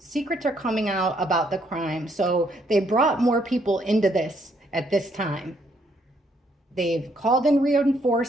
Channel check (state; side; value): normal; both; correlation 0.71